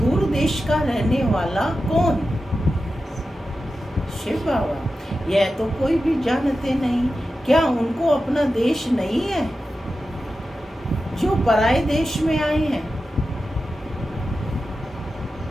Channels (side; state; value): both; normal; correlation 0.92